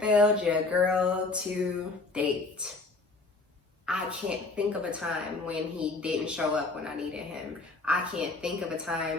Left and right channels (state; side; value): quieter; right; 3.5 dB